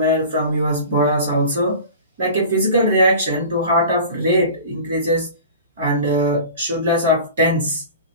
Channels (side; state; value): both; inverted; correlation -0.38